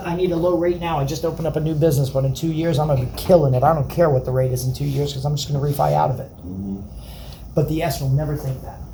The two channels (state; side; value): identical; both; correlation 1.00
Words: I need a low rate now. I just opened up a new business, but in 2 years, I'm going to be killing it. I don't care what the rate is in 2 years because I'm just going to refi out of it. But the S will never think that.